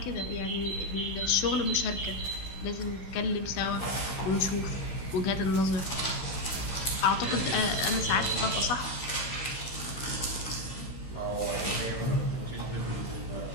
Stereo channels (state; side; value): late; right; 16 ms